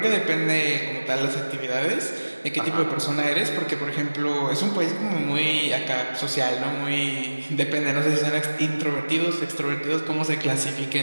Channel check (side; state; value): both; inverted; correlation -1.00